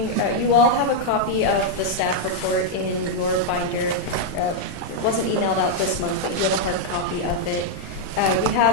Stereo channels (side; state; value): right; late; 35 ms